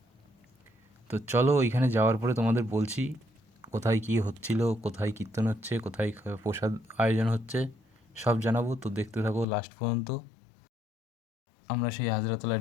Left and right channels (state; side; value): drops out; right; at 9.5 s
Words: তো চলো ওইখানে যাওয়ার পরে তোমাদের বলছি কোথায় কী হচ্ছিল, কোথায় কীর্তন হচ্ছে, কোথায় প্রসাদ আয়োজন হচ্ছে, সব জানাবো। তো দেখতে থাকো লাস্ট পর্যন্ত। আমরা সেই হাজরাতলায়